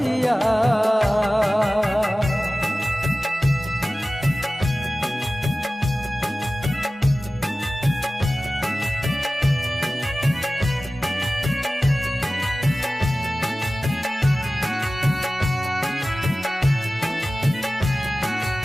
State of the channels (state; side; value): normal; both; correlation 0.96